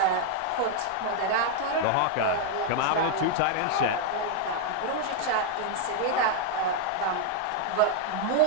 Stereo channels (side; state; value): both; different; correlation 0.00